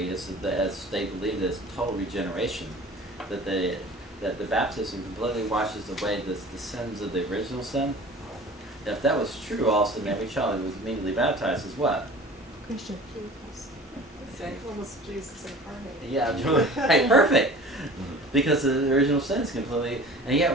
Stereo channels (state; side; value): normal; both; correlation 0.42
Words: is that as they believe that it's total regeneration, that the baptism completely washes away the sins of the original sin. If that was true, all of a sudden every child who was immediately baptized is what? Christian. Almost Jesus incarnate. Yeah, hey, perfect. Because the original sin is completely, and yet